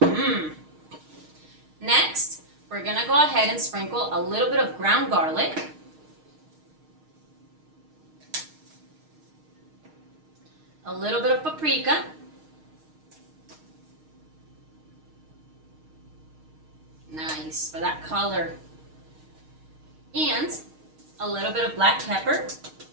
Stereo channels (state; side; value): late; left; 6.4 ms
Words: Next, we're going to go ahead and sprinkle a little bit of ground garlic. A little bit of paprika. Nice for that color. And a little bit of black pepper.